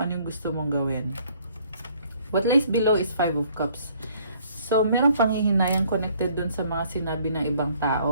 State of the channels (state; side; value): inverted; both; correlation -0.61